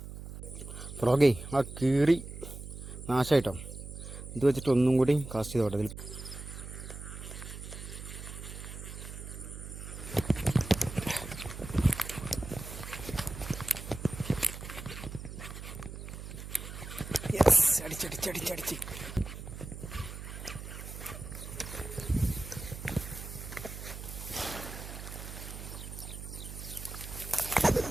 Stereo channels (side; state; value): right; noise; hum, 10 dB below the sound